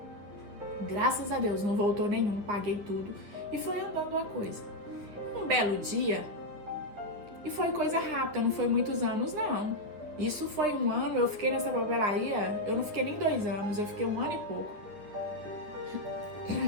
Graças a Deus, não voltou nenhum, paguei tudo e fui andando a coisa. Um belo dia, E foi coisa rápida, não foi muitos anos, não. Isso foi 1 ano, eu fiquei nessa papelaria, eu não fiquei nem 2 anos, eu fiquei 1 ano e pouco.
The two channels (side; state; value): left; late; 9.8 ms